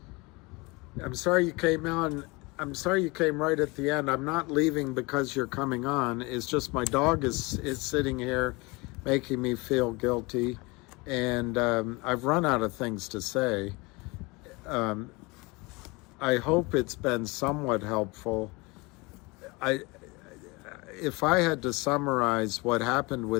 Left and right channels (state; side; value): quieter; right; 25.7 dB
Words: I'm sorry you came on. I'm sorry you came right at the end. I'm not leaving because you're coming on. It's just my dog is sitting here making me feel guilty, and I've run out of things to say. I hope it's been somewhat helpful. If I had to summarize what happened